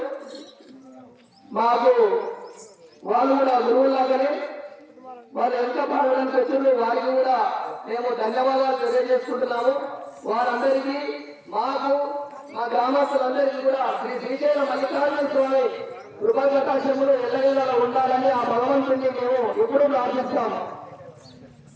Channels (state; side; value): identical; both; correlation 1.00